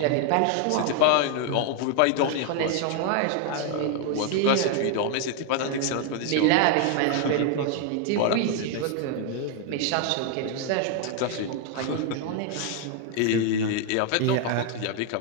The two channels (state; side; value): different; both; correlation 0.00